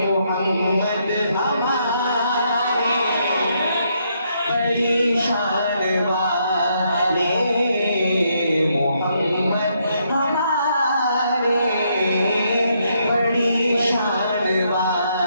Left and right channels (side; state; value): both; inverted; correlation -0.75